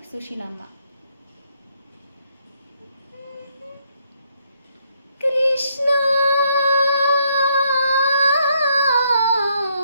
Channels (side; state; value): both; inverted; correlation -0.72